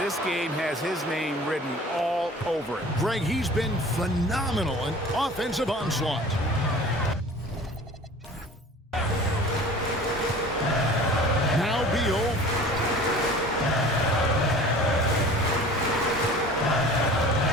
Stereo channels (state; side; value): normal; both; correlation 0.44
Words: this game has his name written all over it. Greg, he's been phenomenal in offensive onslaught. Now Beal.